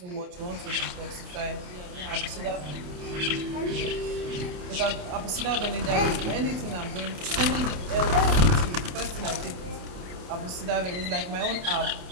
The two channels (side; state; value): left; late; 28 ms